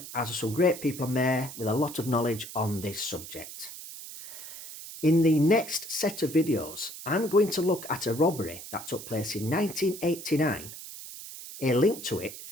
as there are some great people on there with a lot of knowledge on this subject. In the next set of videos, I'm going to look at a robbery that took place in 1989, a link to it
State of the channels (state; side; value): noise; right; hiss, 12 dB below the sound